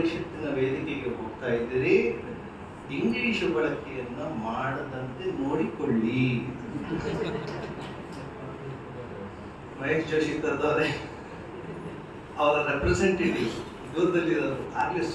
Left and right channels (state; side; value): identical; both; correlation 1.00